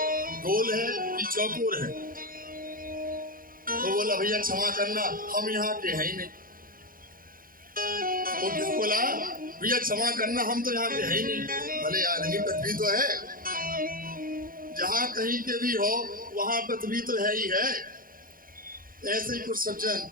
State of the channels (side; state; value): left; late; 0.41 ms